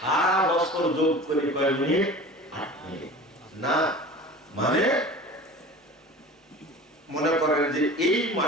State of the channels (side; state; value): both; normal; correlation 0.38